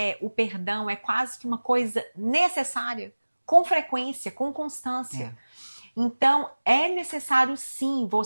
o perdão é quase que uma coisa necessária, com frequência, com constância. Então, é necessário sim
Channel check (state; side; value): inverted; both; correlation -1.00